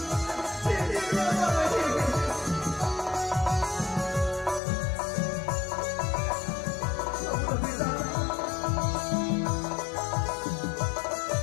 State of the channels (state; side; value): drops out; right; at 4.6 s